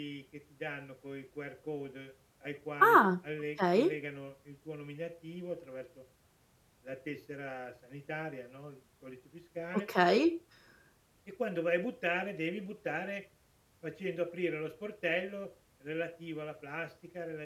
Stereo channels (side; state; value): both; identical; correlation 1.00